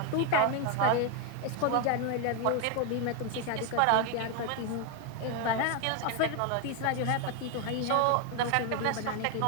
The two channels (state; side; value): different; both; correlation 0.01